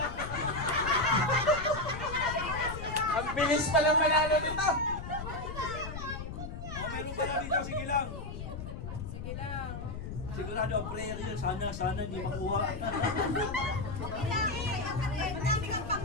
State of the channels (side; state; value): left; noise; rumble, 8 dB below the sound